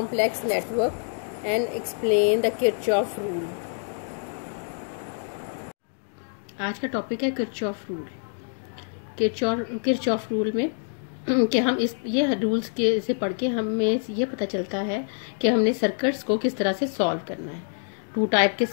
network and explain the Kirchhoff rule. आज का topic है Kirchhoff rule. Kirchhoff rule में कि हम ये rules के से पढ़ के हमें ये पता चलता है कि हमने सर्किट्स को किस तरह से सॉल्व करना है। 2 टाइप के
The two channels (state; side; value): silent; right; digital silence